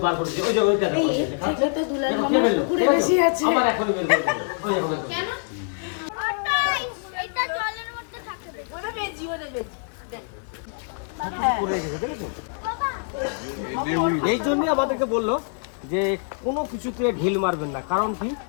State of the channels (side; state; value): right; silent; 56 dB below the other